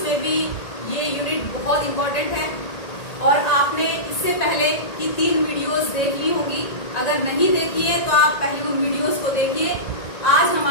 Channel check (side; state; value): right; late; 1.9 ms